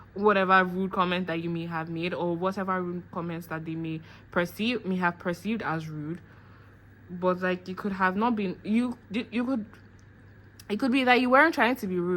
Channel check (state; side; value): identical; both; correlation 1.00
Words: whatever rude comment that you may have made, or whatever rude comments that they may have perceived as rude. But like you could have not been, it could be that you weren't trying to be